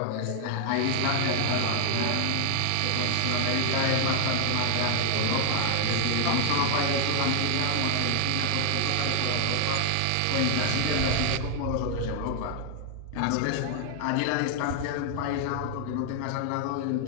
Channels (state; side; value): different; both; correlation 0.00